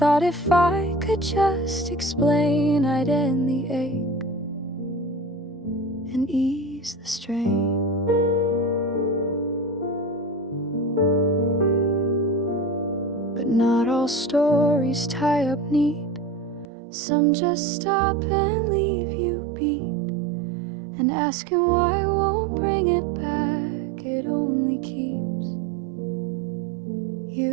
if I could just explain, I'd end the ache and ease the strain. But not all stories tie up neat. Some just stop and leave you beat, and asking why won't bring it back. It only keeps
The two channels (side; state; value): left; drops out; at 16.7 s